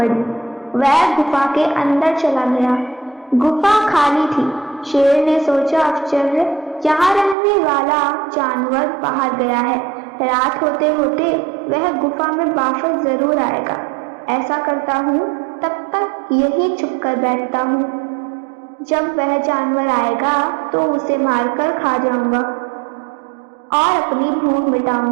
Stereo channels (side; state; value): left; drops out; at 7.4 s